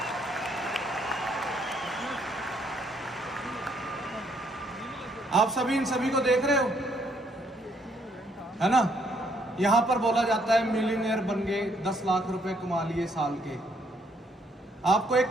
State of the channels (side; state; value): both; normal; correlation 0.69